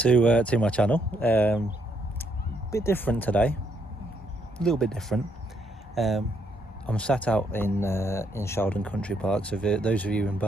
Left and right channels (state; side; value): normal; both; correlation 0.73